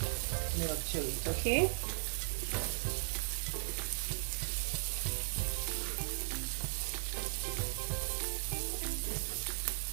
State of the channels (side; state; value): left; silent; digital silence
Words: milk to it. Okay.